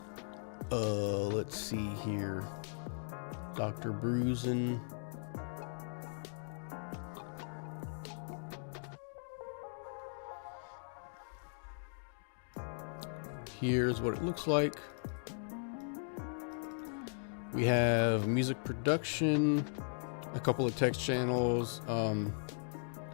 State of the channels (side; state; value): right; silent; digital silence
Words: Let's see here. Dr. Bruisin. Here's what it looks like. We have music production, a couple of text channels.